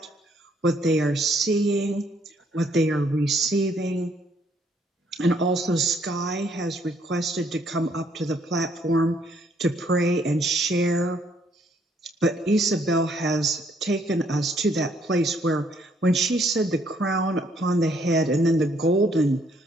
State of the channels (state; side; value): normal; both; correlation 0.67